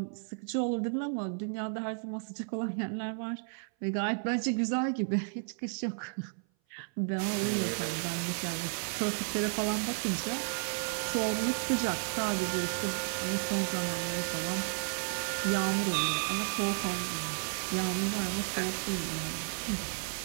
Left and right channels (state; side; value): silent; left; 56 dB below the other